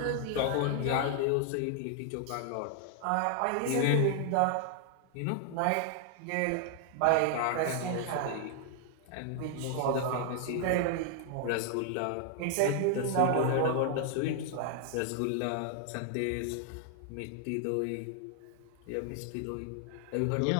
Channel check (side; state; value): both; different; correlation 0.00